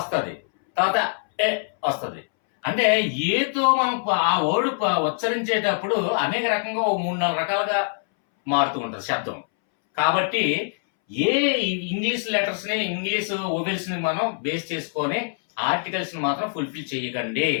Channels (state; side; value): silent; right; 62 dB below the other